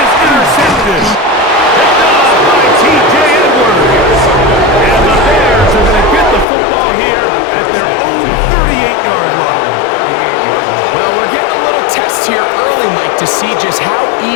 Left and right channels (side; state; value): right; drops out; at 6.5 s